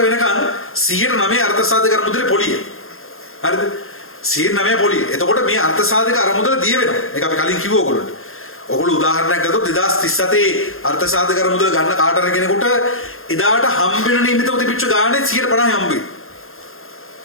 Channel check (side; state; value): right; late; 0.61 ms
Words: වෙනකන් 109 අර්ථ සාධක අරමුදලේ පොලිය. හරිද? 109 පොලිය. එතකොට මේ අර්ථ සාධක අරමුදල දිය වෙනවා. ඒක අපි කලින් කිව්ව ඔයගොල්ලන්ට. ඔයගොල්ලෝ උදාහරණයක් ගත්තොත් 2037 අර්ථ සාධක අරමුදල ගන්න කාට හරි කෙනෙකුට එදාට හම්බෙන නිමිතව තිබිච්ච ගානේ 150 හම්බෙයි.